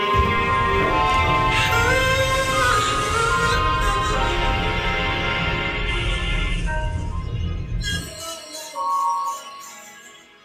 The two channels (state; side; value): identical; both; correlation 1.00